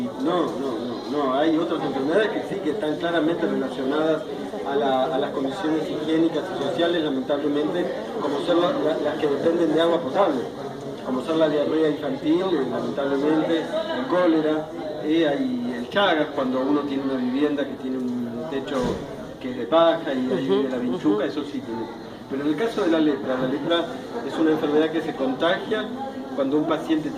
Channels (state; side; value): identical; both; correlation 1.00